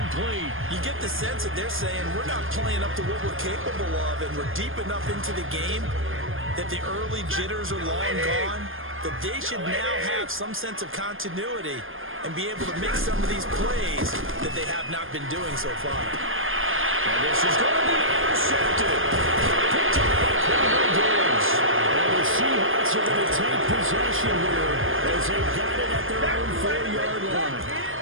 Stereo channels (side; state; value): left; late; 0.59 ms